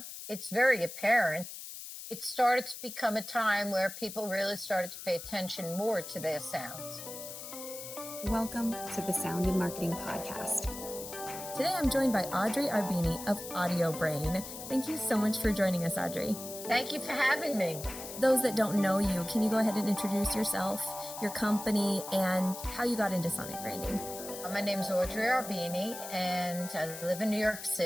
it's very apparent. It started to become a time where people really started to pay attention more to their sounds. Welcome to the Sound and Marketing Podcast. Today I'm joined by Audrey Arbeeny of Audiobrain. Thank you so much for joining us, Audrey. Thank you for having me. Those that don't know you, can you go ahead and introduce yourself, your company, and how you got into sonic branding? My name's Audrey Arbeeny, and I live in New York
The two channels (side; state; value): left; noise; hiss, 10 dB below the sound